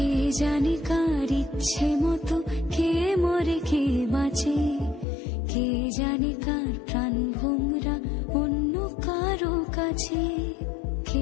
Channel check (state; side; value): drops out; right; at 5.1 s